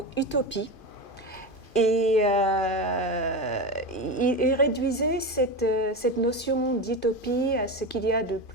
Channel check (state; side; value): late; right; 2.5 ms